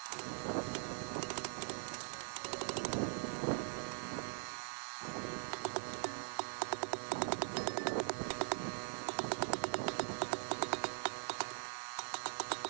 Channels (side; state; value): left; silent; digital silence